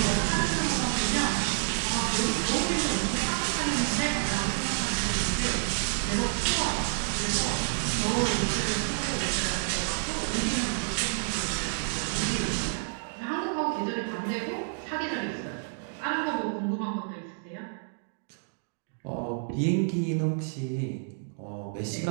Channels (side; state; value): left; silent; digital silence